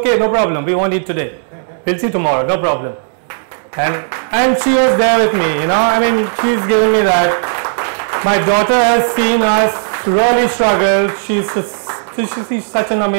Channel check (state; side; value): silent; left; digital silence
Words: no problem. We won't eat today. We'll see tomorrow. No problem. And she was there with me, I mean, she's giving me that. My daughter has seen us really struggle. She's such an